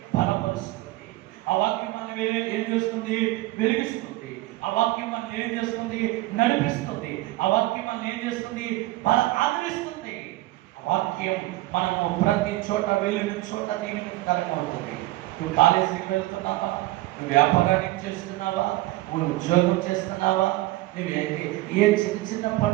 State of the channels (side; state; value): left; quieter; 18.4 dB